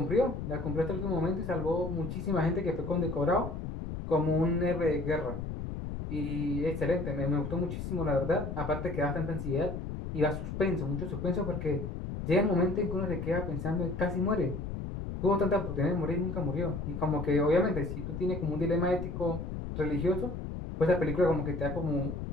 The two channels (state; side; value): noise; left; rumble, 6 dB below the sound